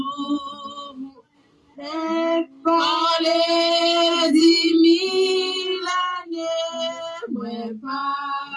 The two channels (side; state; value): both; identical; correlation 1.00